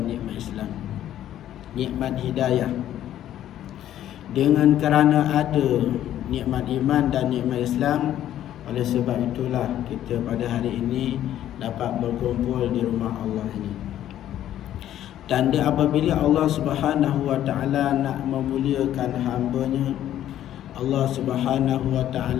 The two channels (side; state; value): right; quieter; 11.9 dB